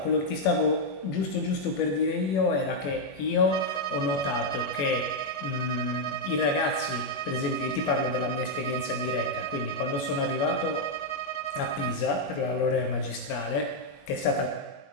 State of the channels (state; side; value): late; right; 21 ms